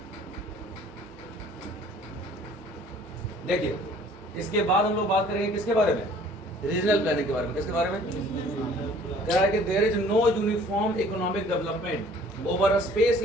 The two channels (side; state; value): both; normal; correlation 0.53